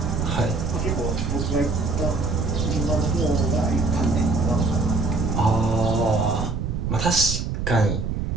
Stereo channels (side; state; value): right; noise; rumble, 2 dB below the sound